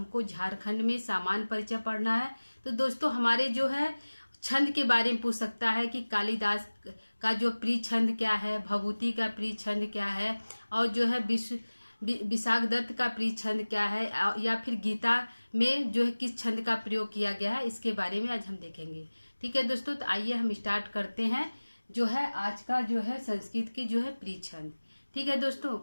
झारखंड में सामान्य परिचय पढ़ना है। तो दोस्तों, हमारे जो है छंद के बारे में पूछ सकता है कि कालिदास का जो प्रिय छंद क्या है, भभूति का प्रिय छंद क्या है, और जो है विशाख दत्त का प्रिय छंद क्या है, या फिर गीता में जो है किस छंद का प्रयोग किया गया है, इसके बारे में आज हम देखेंगे। ठीक है दोस्तों, तो आइए हम स्टार्ट करते हैं जो है आज का जो है संस्कृत के जो है प्रिय छंद। ठीक है दोस्तों,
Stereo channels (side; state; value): both; inverted; correlation -1.00